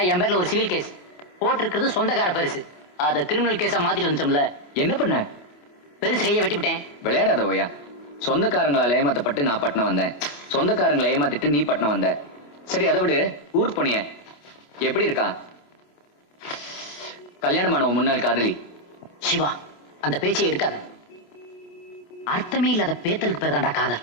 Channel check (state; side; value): late; right; 25 ms